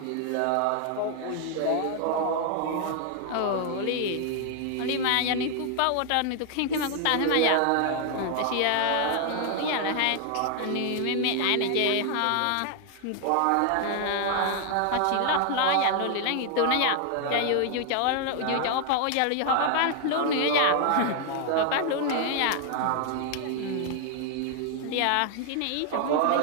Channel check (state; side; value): different; both; correlation 0.00